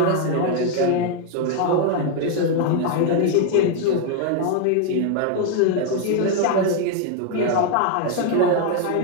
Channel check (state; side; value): different; both; correlation 0.01